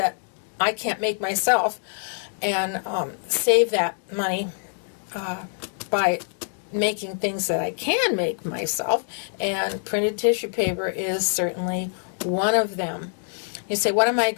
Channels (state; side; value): silent; right; digital silence